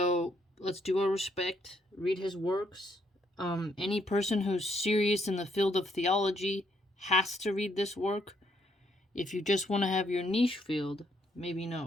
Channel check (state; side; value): normal; both; correlation 0.72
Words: let's do our respect, read his works. Any person who's serious in the field of theology has to read this work. If you just want to have your niche field, maybe